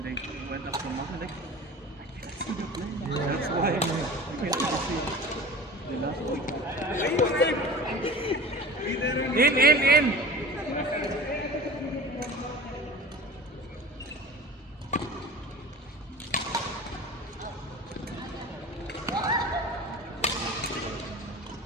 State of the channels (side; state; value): both; normal; correlation 0.38